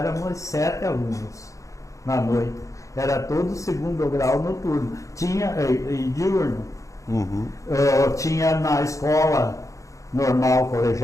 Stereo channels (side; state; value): right; late; 0.15 ms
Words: 7 alunos na noite. Era todo 2º grau noturno. Tinha diurno. Tinha na escola normal